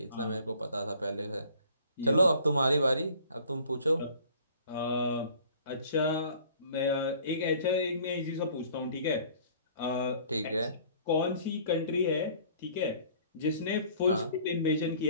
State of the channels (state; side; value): inverted; both; correlation -0.53